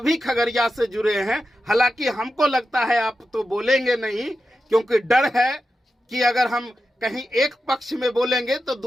खगड़िया से जुड़े हैं, हालांकि हमको लगता है आप तो बोलेंगे नहीं, क्योंकि डर है कि अगर हम कहीं एक पक्ष में बोलेंगे तो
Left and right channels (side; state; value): both; normal; correlation 0.91